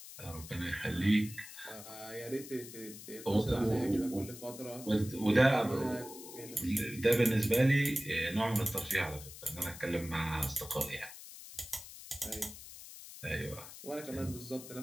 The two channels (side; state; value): left; noise; hiss, 14 dB below the sound